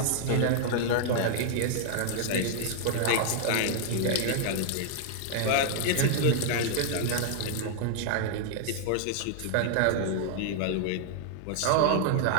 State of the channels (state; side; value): different; both; correlation -0.01